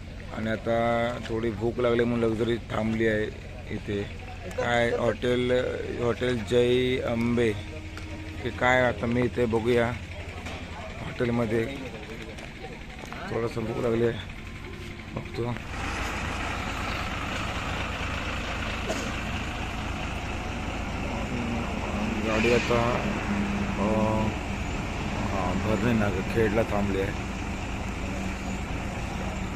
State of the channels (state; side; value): identical; both; correlation 1.00